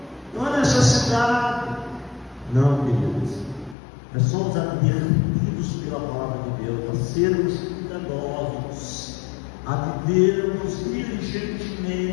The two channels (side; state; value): right; drops out; at 3.8 s